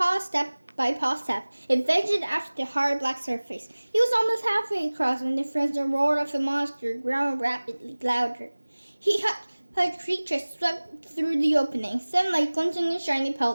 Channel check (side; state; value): both; inverted; correlation -1.00